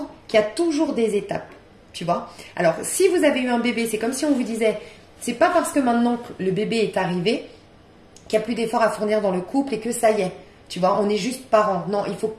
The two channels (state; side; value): identical; both; correlation 1.00